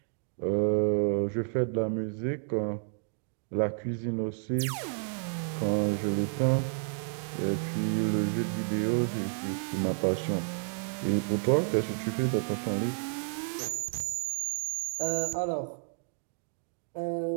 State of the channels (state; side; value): silent; left; digital silence